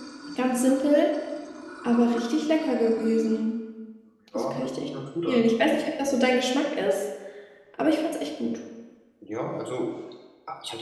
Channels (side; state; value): both; identical; correlation 1.00